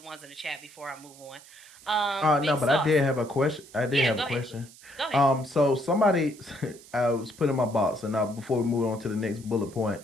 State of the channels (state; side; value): noise; right; hiss, 22 dB below the sound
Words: in the chat before I move on? No, Big but I Sauce. did have a question. I did Yeah, have go a ahead. question. Go ahead. So somebody, I was putting my box, and now before we move on to the next bullet point,